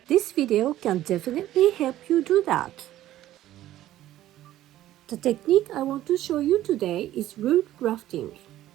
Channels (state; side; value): quieter; left; 13.8 dB